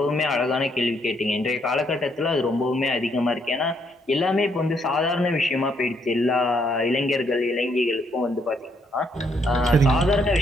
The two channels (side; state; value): both; normal; correlation 0.72